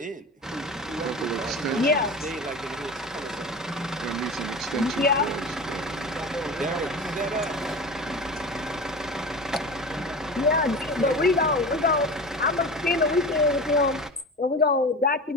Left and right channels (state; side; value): normal; both; correlation 0.31